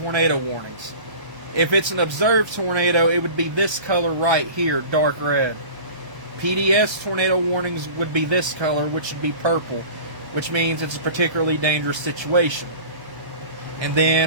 warnings. If it's an observed tornado, it would be this color right here, dark red. PDS tornado warnings would be this color, which would be purple, which means it's a particularly dangerous situation. And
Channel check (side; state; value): left; late; 1.1 ms